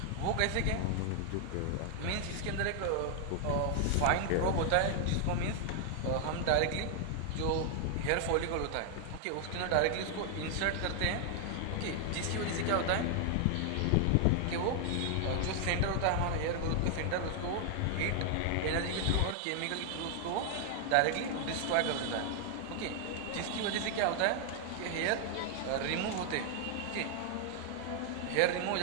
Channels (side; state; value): both; different; correlation 0.00